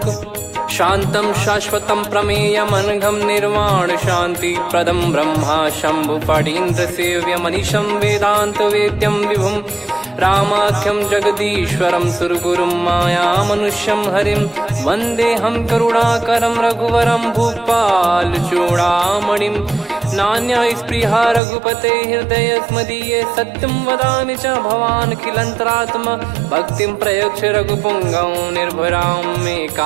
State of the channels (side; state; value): left; drops out; at 21.4 s